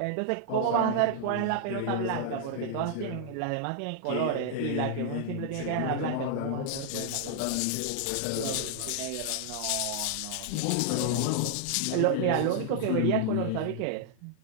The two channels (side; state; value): both; different; correlation 0.00